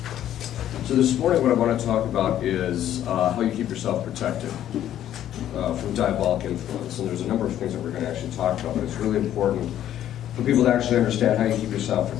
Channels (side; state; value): right; quieter; 11.5 dB